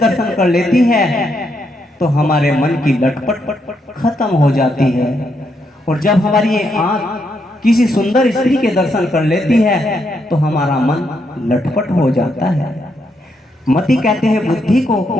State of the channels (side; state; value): both; normal; correlation 0.78